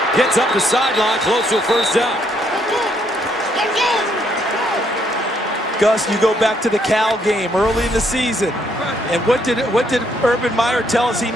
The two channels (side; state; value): both; normal; correlation 0.71